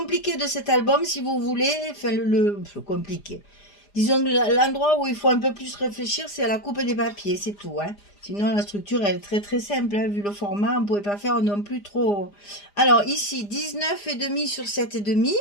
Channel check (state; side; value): late; right; 4.9 ms